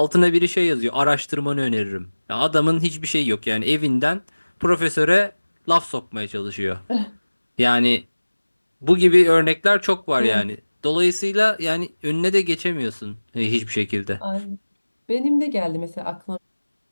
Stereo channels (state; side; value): inverted; both; correlation -1.00